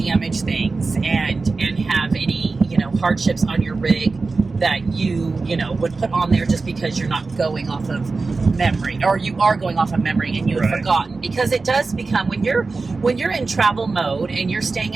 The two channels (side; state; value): left; quieter; 4.0 dB